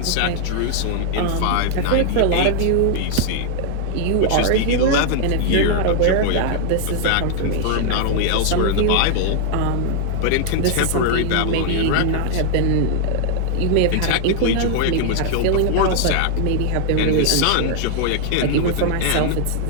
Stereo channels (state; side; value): different; both; correlation 0.00